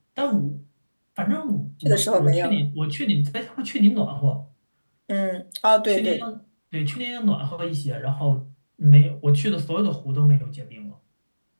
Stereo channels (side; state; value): both; inverted; correlation -1.00